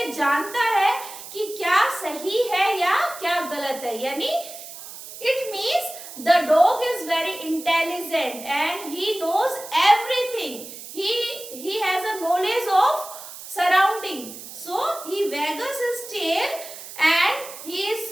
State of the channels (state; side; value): noise; right; hiss, 13 dB below the sound